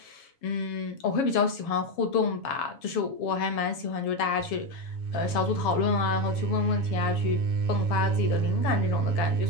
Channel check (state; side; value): late; right; 7.2 ms